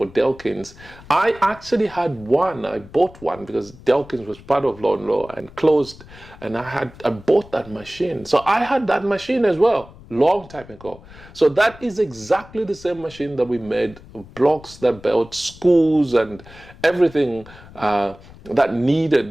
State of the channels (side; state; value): left; noise; rumble, 21 dB below the sound